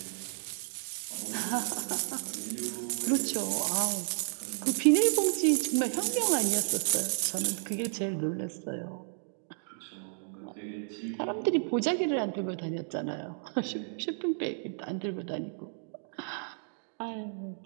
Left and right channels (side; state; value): left; silent; digital silence